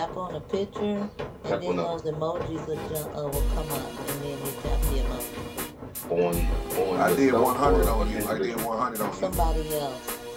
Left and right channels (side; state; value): both; identical; correlation 1.00